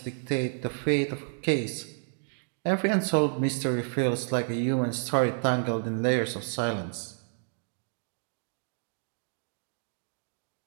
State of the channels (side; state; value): left; silent; digital silence